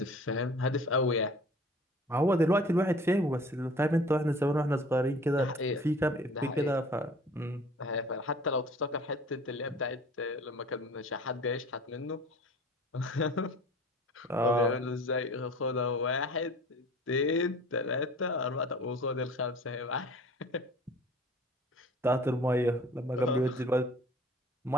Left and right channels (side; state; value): both; normal; correlation 0.46